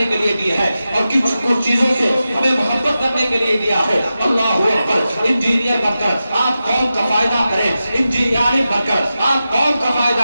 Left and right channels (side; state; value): both; inverted; correlation -0.92